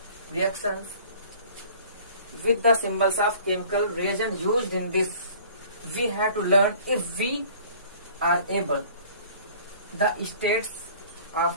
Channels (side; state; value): both; inverted; correlation -0.50